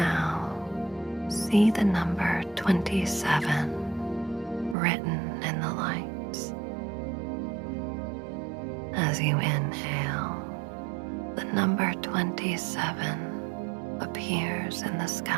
see the number 27 written in the lights. As you inhale, the number 27 appears in the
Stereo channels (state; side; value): drops out; left; at 4.8 s